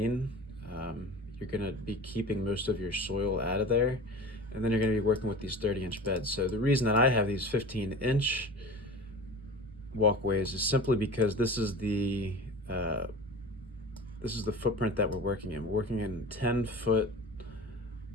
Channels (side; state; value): both; normal; correlation 0.35